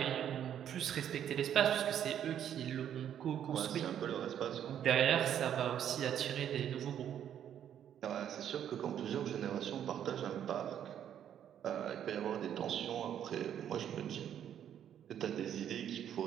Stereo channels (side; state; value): left; quieter; 9.8 dB